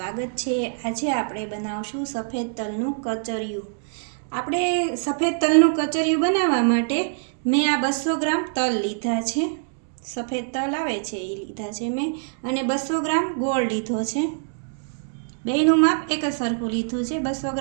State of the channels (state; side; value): silent; left; digital silence